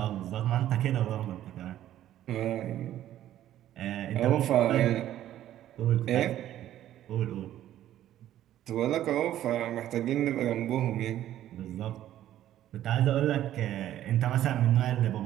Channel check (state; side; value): quieter; left; 12.5 dB